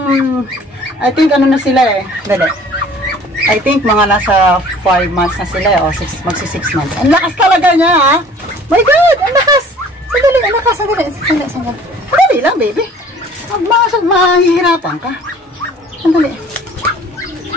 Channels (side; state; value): both; normal; correlation 0.50